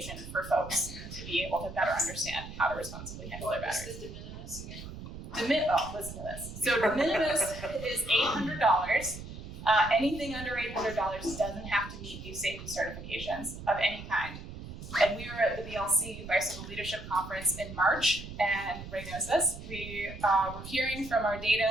for folks to be able to better understand how to responsibly handle their batteries. What's the de minimis again? Listen to this. So de minimis is $800. Anything under $800 doesn't have to meet these safety certifications of any kind. And we were at the BLC Bicycle Leadership Conference in March, and Ray knows this. We were hearing from our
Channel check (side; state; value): right; noise; rumble, 11 dB below the sound